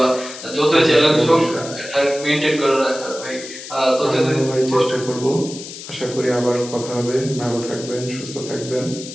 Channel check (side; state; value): left; noise; hiss, 12 dB below the sound